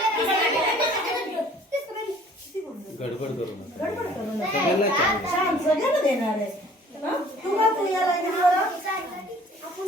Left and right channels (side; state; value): both; normal; correlation 0.53